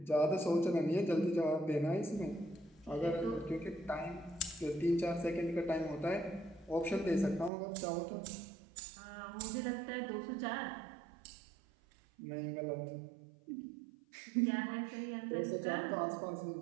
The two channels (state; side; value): drops out; left; at 7.5 s